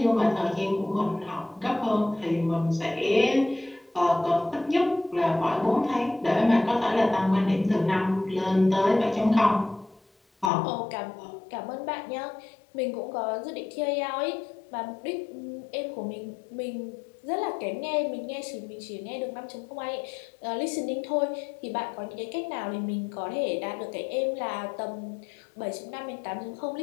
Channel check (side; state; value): right; drops out; at 10.5 s